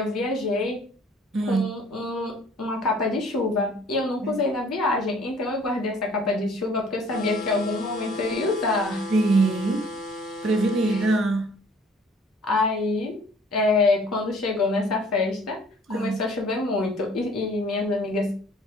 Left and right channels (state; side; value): normal; both; correlation 0.54